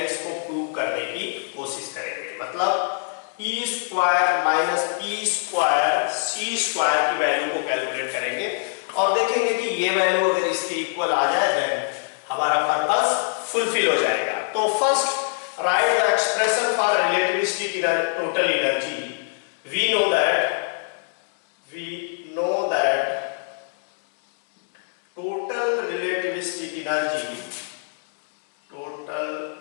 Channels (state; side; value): silent; right; 63 dB below the other